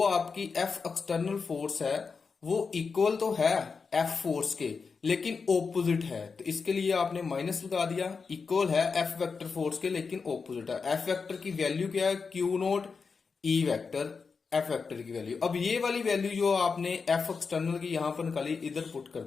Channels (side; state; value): right; quieter; 5.1 dB